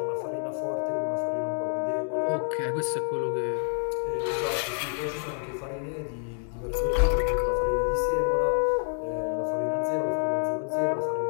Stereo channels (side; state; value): right; silent; 55 dB below the other